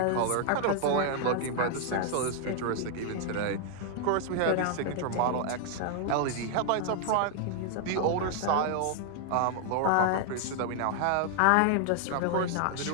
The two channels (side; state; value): both; different; correlation 0.00